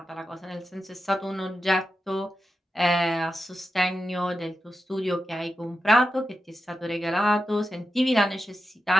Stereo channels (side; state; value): both; normal; correlation 0.90